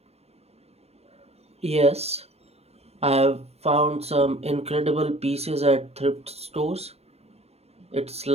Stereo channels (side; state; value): left; late; 0.30 ms